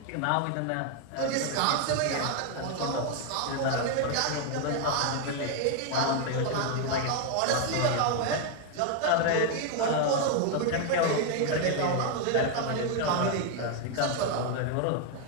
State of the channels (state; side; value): different; both; correlation 0.01